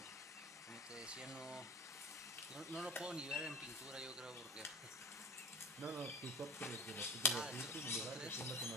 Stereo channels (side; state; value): both; normal; correlation 0.36